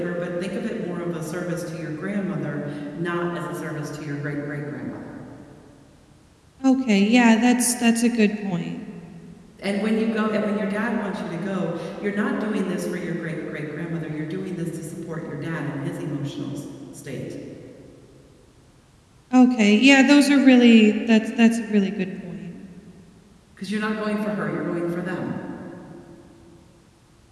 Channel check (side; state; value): both; identical; correlation 1.00